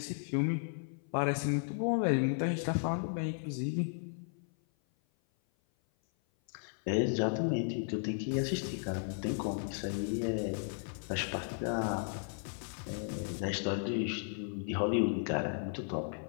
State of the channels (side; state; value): right; silent; 54 dB below the other